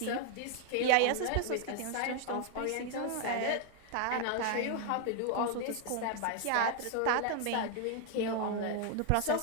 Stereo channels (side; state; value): both; different; correlation 0.00